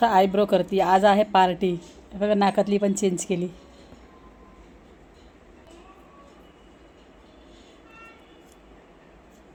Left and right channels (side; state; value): both; identical; correlation 1.00